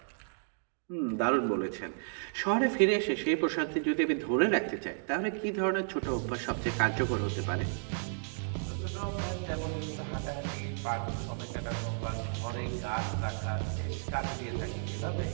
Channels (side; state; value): left; silent; digital silence